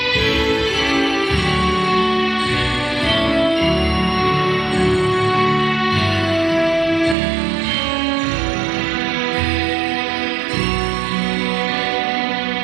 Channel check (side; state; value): left; drops out; at 7.2 s